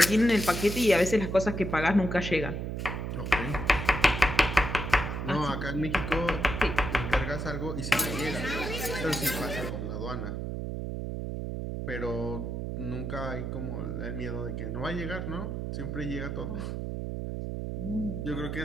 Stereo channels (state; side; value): noise; right; hum, 4 dB below the sound